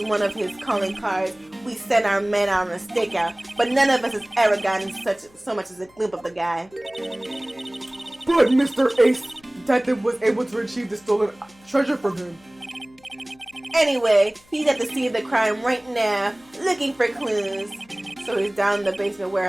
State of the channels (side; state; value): left; noise; hum, 29 dB below the sound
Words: one of his calling cards, we send our men out on a stakeout. But none of us has ever gotten so much as a glimpse of the guy. But Mr. Ace Detective was able to retrieve the stolen treasure from him. Anyway, he's at the scene of the crime right now, looking for clues. So he's down in the basement